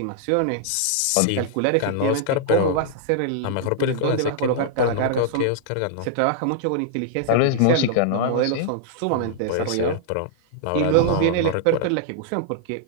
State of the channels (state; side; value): different; both; correlation -0.01